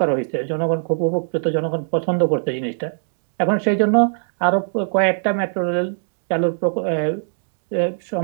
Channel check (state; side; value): silent; left; digital silence